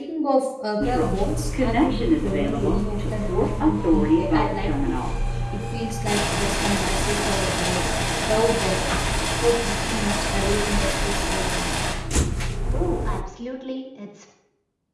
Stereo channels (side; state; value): both; identical; correlation 1.00